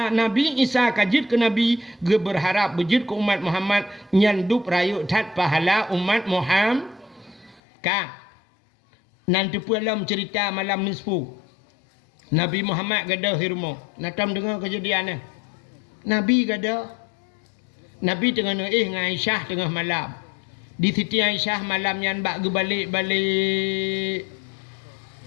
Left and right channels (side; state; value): right; drops out; at 7.6 s